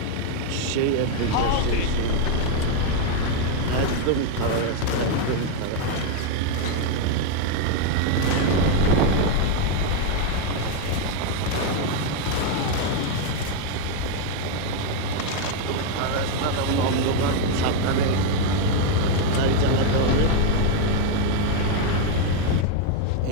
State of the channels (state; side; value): different; both; correlation 0.01